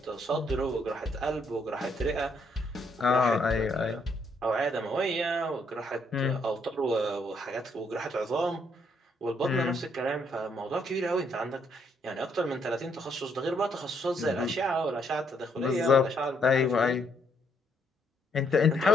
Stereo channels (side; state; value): both; normal; correlation 0.72